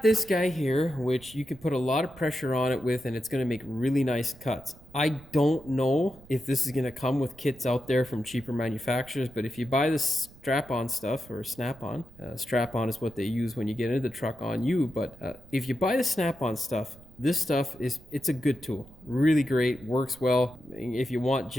this guy here, which you can put a lot of pressure on it with, and it's going to make really nice cuts. I don't know if this is going to come with kits out there from cheaper manufacturers, but if you buy this strap-on stuff, or Snap-on, strap-on is what they use when you get into the truck on you, but if you buy the Snap-on stuff, this stuff it's a good tool. Really great, works well. If you want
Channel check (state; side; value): noise; right; rumble, 22 dB below the sound